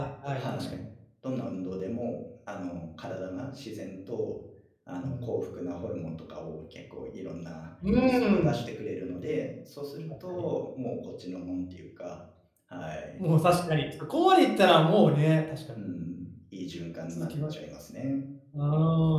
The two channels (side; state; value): both; identical; correlation 1.00